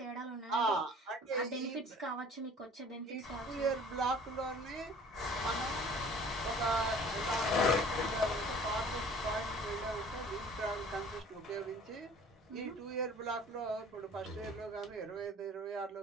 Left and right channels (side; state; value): both; normal; correlation 0.49